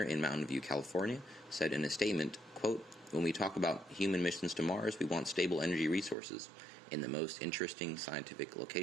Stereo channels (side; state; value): left; drops out; at 6.2 s